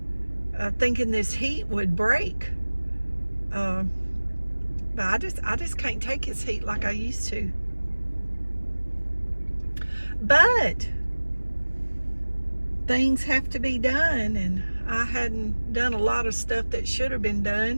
thinking this heat would break. But I just can't take his heat like I used to. But things have to be done, and I hadn't done a lot of stuff that should have been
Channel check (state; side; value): inverted; both; correlation -1.00